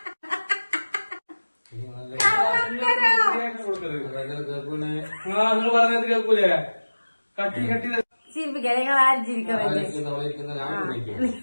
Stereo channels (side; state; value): both; inverted; correlation -1.00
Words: ചിരിപ്പിക്കാം, നിങ്ങൾ ആരും ചിരിക്കണല്ലേ.